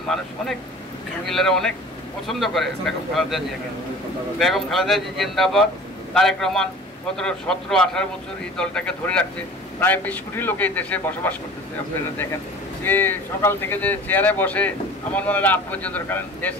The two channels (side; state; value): both; normal; correlation 0.42